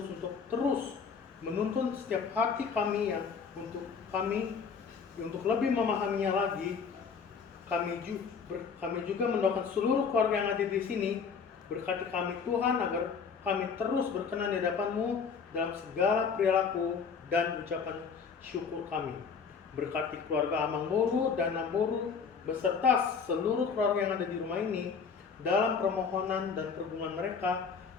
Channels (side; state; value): right; quieter; 5.9 dB